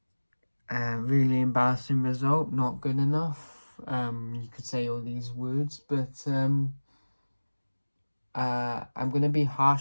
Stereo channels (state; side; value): inverted; both; correlation -1.00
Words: really embarrassing result, not good enough. You could say all these words, but I'm gonna be